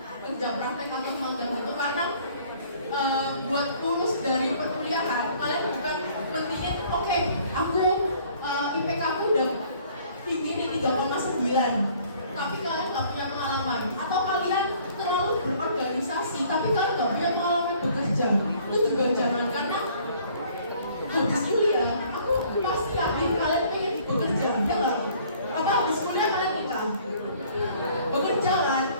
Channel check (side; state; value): both; inverted; correlation -0.57